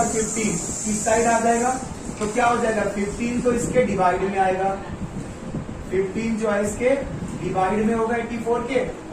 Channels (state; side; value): identical; both; correlation 1.00